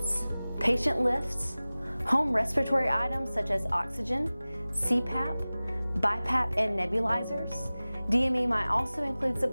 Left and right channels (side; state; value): both; inverted; correlation -0.98